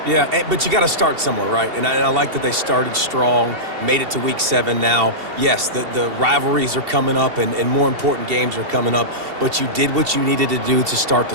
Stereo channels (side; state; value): left; late; 2.7 ms